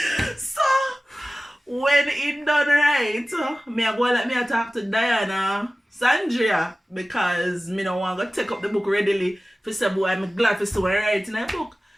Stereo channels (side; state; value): both; normal; correlation 0.97